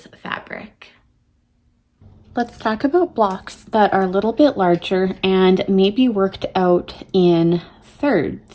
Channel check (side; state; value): both; identical; correlation 1.00